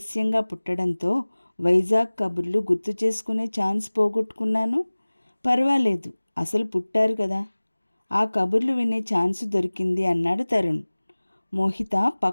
పుట్టడంతో వైజాగ్ కబుర్లు గుర్తు చేసుకునే ఛాన్స్ పోగొట్టుకున్నాను. పర్వాలేదు, అసలు పుట్టారు కదా, ఆ కబుర్లు వినే ఛాన్స్ దొరికింది అన్నాడు తరుణ్. మోహిత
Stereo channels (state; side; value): inverted; both; correlation -1.00